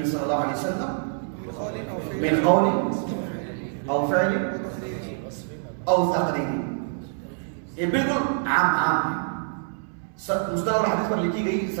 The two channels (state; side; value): silent; left; 61 dB below the other